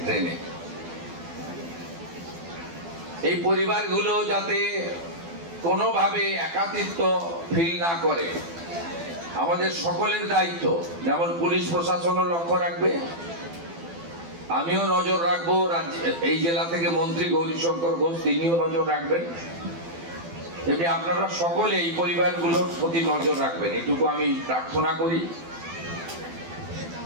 ট্রেনে। এই পরিবারগুলো যাতে কোনোভাবে একাকিত্ব ফিল না করে, আমাদের সকলের দায়িত্ব। যেমন পুলিশ প্রশাসনও লক্ষ্য রাখবে, আমিও নজর রাখবো, এই জেলা থেকে মন্ত্রী গৌরীশঙ্কর ঘোষ তিনিও নজর রাখবেন, তেমনি আপনারা সকলে এই পরিবারগুলোর প্রতি নজর রাখবেন, এটুকু আমি প্রার্থনা করি।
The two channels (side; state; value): left; late; 12 ms